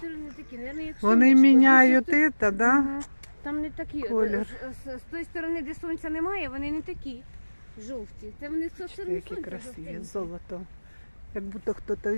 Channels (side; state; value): both; inverted; correlation -1.00